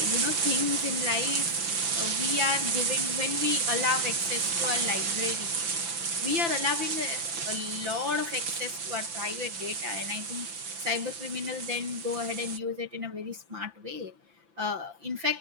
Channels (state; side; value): late; left; 5.9 ms